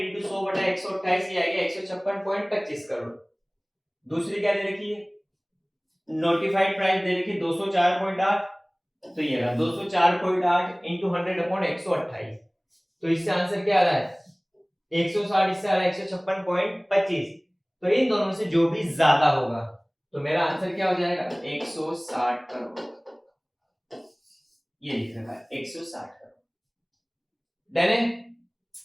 100/128 ये आएगा 156.25 करोड़। दूसरी क्या दे रखी है, नोटिफाइड प्राइस दे रखी है 204.8, तो ये रहा 204.8 इंटू 100/128। तो इससे आंसर क्या आ रहा है 160, इससे आ रहा है 156.25। तो इन दोनों में से जो भी ज्यादा होगा तो मेरा आंसर क्या हो जाएगा 160 करोड़। ये लिख रखा है 160 करोड़। डन है।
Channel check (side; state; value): both; identical; correlation 1.00